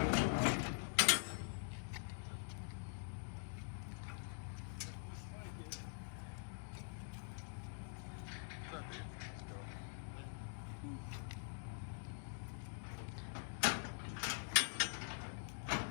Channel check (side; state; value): right; silent; digital silence